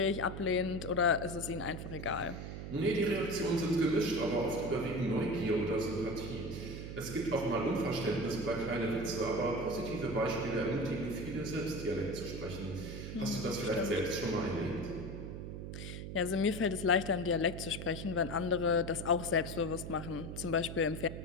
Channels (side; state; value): right; noise; hum, 7 dB below the sound